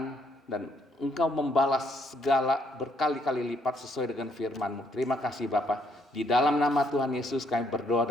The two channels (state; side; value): normal; both; correlation 0.70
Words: dan Engkau membalas segala berkali-kali lipat sesuai dengan firman-Mu. Terima kasih Bapak. Di dalam nama Tuhan Yesus kami berdoa